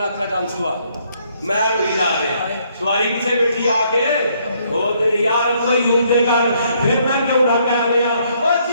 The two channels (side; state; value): both; inverted; correlation -0.69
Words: اکھاں چانسو آ میں روئی جا رہا سواری پیچھے بیٹھی آ کے او تیری یار ابو ایوب دے گھر پھر میں کیوں نہ کہہ لیا او